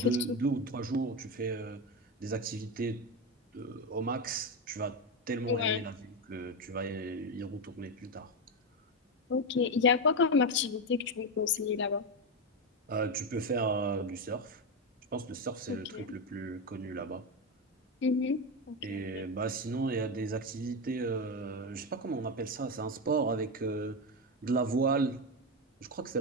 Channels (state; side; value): normal; both; correlation 0.11